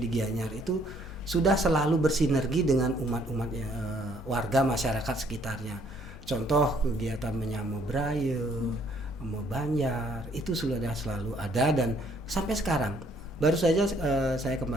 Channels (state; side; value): normal; both; correlation 0.65